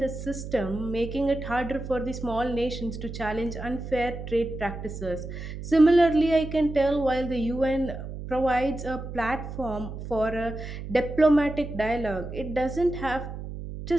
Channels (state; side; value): noise; right; hum, 9 dB below the sound